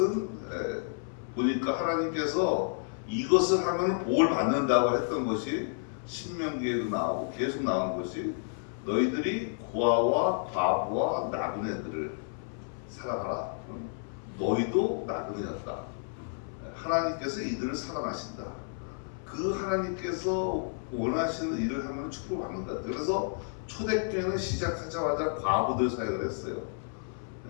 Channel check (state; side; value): silent; right; 57 dB below the other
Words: 보니까 하나님께서 이것을 하면 복을 받는다고 했던 것이 신명기에도 나오고 계속 나오는 것이 너희들이 고아와 과부와 나그네들을 사랑하라. 너희도 나그네였다. 하나님께서 이들을 사랑하신다. 그 하나님께서 원하시는 일을 하면 축복을 받는 것 같아요. 그래서 초대교회는 시작하자마자 과부들 사역을 했어요.